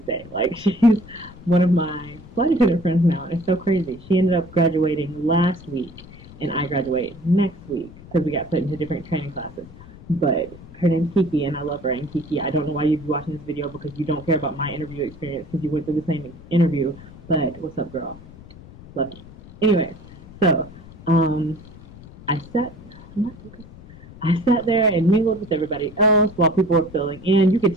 day. Like, she's one of my flight attendant friends now, and it's so crazy. She ended up graduating last week, and I graduate next week because we got put into different training classes. But her name's Kiki, and I love her. And Kiki, I don't know why you'd be watching this video because you don't care about my interview experience because you went through the same interview. But what's up, girl? Love you. Anyway, so I sat there and mingled with everybody else while people were filling in. You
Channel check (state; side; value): noise; left; rumble, 19 dB below the sound